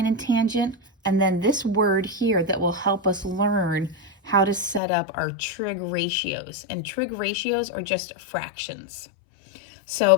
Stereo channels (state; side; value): drops out; right; at 4.8 s